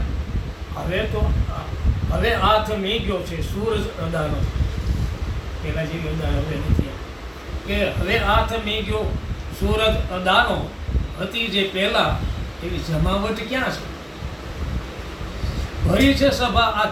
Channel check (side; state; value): both; identical; correlation 1.00